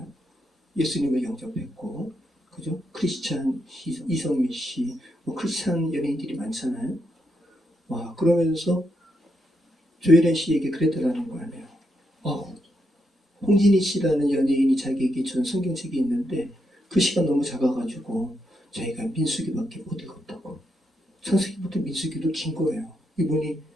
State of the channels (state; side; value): normal; both; correlation 0.81